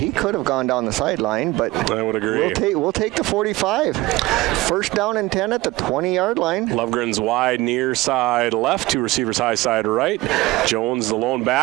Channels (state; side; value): quieter; left; 19.7 dB